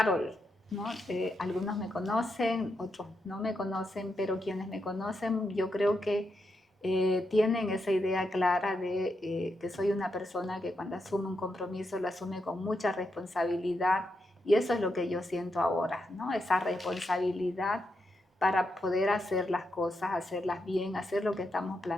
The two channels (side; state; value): both; normal; correlation 0.83